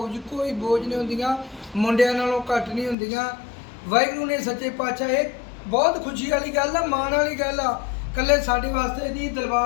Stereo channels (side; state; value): right; drops out; at 3.0 s